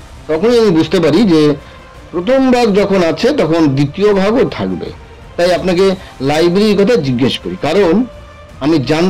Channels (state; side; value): identical; both; correlation 1.00